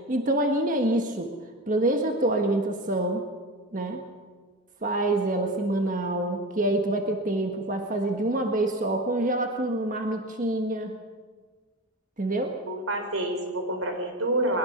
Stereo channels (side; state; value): both; normal; correlation 0.26